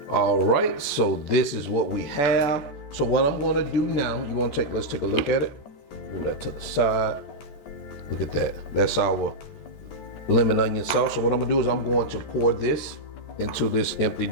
All right, so this is what we have. So what I'm gonna do now, let's take a look at it. Move that to the side. Look at that. That's our lemon onion sauce. So what I'm gonna do is I'm going to pour this into this empty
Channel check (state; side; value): late; right; 14 ms